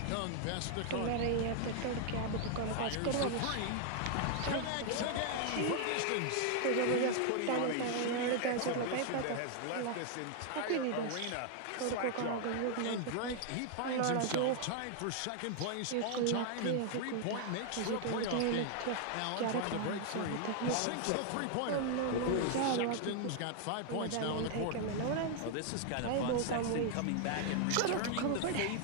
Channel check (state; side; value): different; both; correlation 0.00